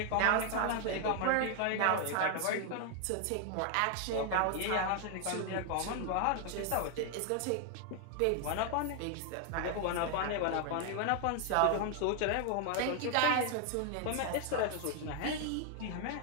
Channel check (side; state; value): both; different; correlation 0.00